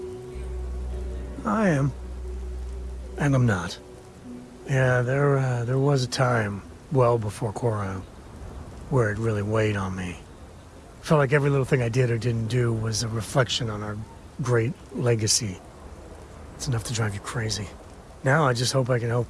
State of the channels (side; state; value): both; identical; correlation 1.00